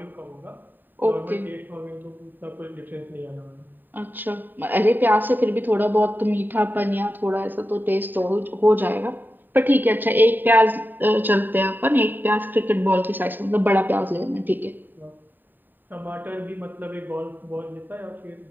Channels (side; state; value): left; late; 0.091 ms